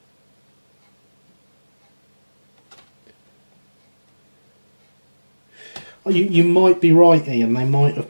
You might be right, Ian. They might have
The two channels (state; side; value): inverted; both; correlation -1.00